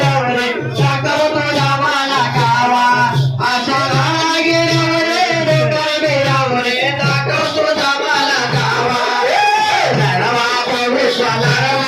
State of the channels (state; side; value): identical; both; correlation 1.00